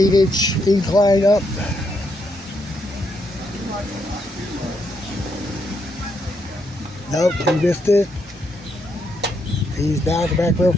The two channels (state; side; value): normal; both; correlation 0.78